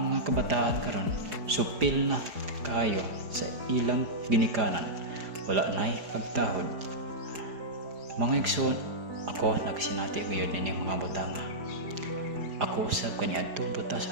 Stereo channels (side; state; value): left; late; 4.9 ms